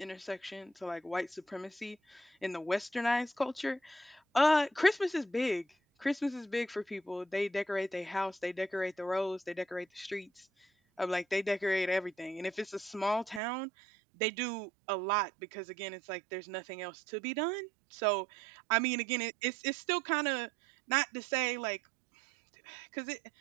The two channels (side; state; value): left; drops out; at 13.4 s